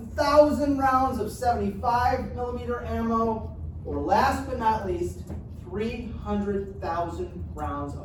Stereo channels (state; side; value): identical; both; correlation 1.00